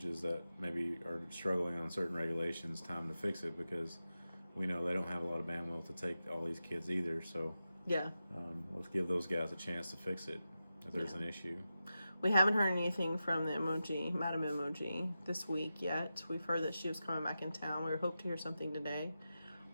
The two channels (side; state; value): both; inverted; correlation -0.91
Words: that maybe are struggling on certain regulations time to fix it, because we know they don't have a lot of bandwidth to take all these kids either. So yeah, let's give those guys a chance to fix it if there's an issue. We haven't heard anything from the MOG, Madam MOG, this week yet. We've heard that she was coming back in town. We hope to hear something today.